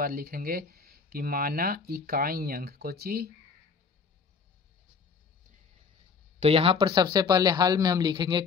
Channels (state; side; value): quieter; right; 5.3 dB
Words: लिखेंगे कि माना इकाई अंक, कोची तो यहाँ पर सबसे पहले हल में हम लिखेंगे